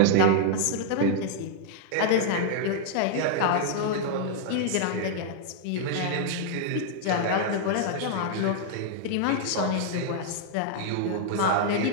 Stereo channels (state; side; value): different; both; correlation -0.01